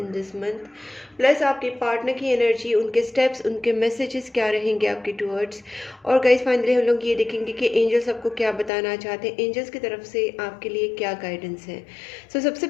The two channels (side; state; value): right; drops out; at 8.7 s